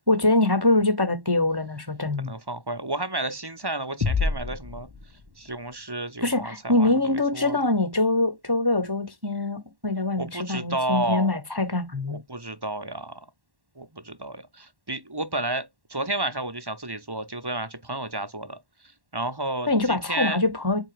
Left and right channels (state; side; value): late; left; 1.1 ms